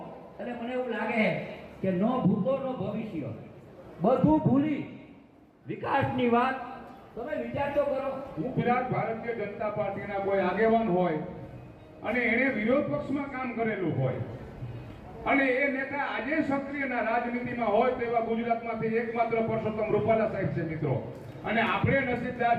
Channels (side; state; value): both; identical; correlation 1.00